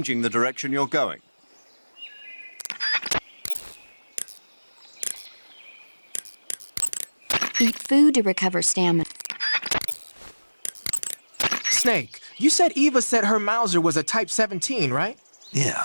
the direction you're going. Eat food to recover stamina. Snake, you said Eva said her Mauser was a Type 17, right?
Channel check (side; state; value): both; inverted; correlation -1.00